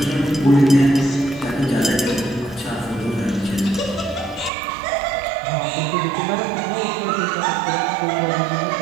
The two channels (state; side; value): drops out; left; at 4.5 s